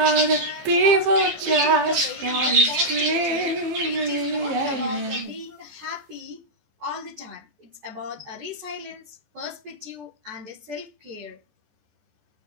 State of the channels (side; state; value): left; late; 14 ms